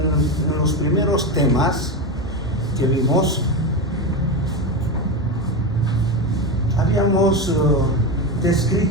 los primeros temas que vimos, habíamos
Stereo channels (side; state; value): both; normal; correlation 0.17